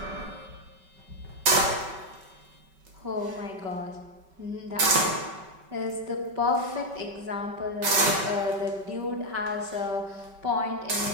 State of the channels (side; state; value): left; late; 5.2 ms